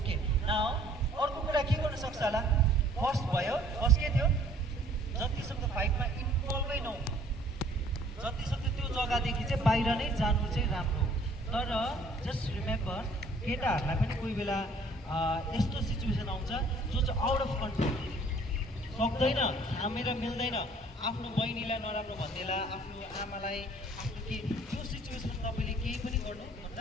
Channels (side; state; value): both; normal; correlation 0.56